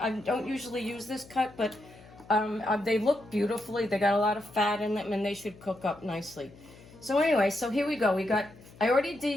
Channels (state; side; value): noise; left; hum, 22 dB below the sound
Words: don't usually use this cut, but they look beautifully. They got a lot of fat in them and they should cook up nicely. So anyway, so here we go. I already